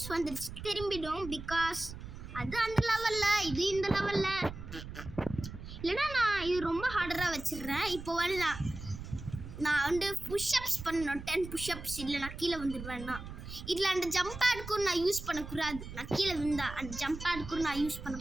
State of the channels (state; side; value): noise; right; rumble, 11 dB below the sound